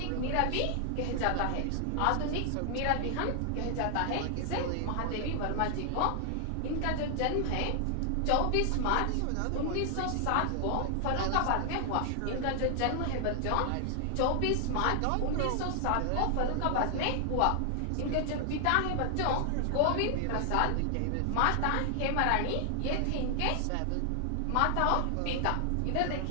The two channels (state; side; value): different; both; correlation 0.00